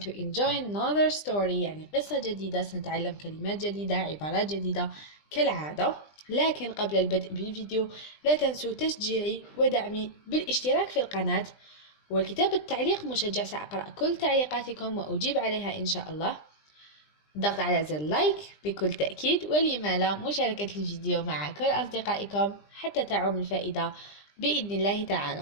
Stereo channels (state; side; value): late; right; 20 ms